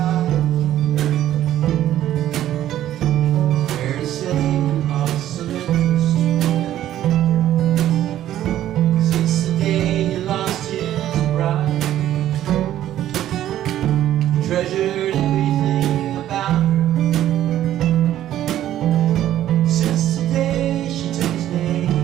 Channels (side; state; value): left; quieter; 12.4 dB